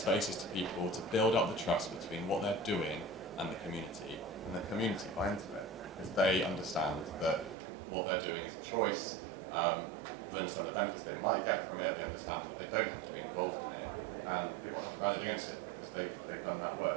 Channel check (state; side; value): drops out; left; at 7.6 s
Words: to people to build up the trust between what they're doing and the community. And the community buy into it because they understand that what they're doing is a choice. They understand the benefits they might get from it. They understand that they don't have to be involved in it, and people haven't rallied against it because they've done that